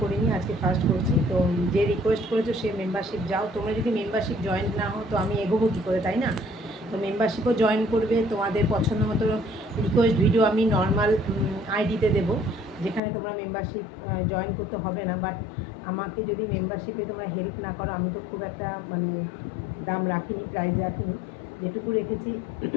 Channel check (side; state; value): right; drops out; at 13.0 s